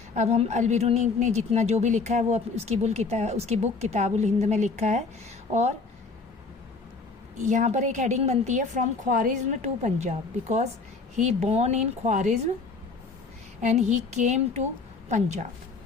अब हम अल-बिरूनी ने जितना जो भी लिखा है वो उसकी बुक किताबुल हिंद में लिखा है, और यहाँ पर एक हेडिंग बनती है from Khwarizm to Punjab, because he born in Khwarizm and he came to Punjab.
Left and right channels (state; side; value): quieter; right; 4.2 dB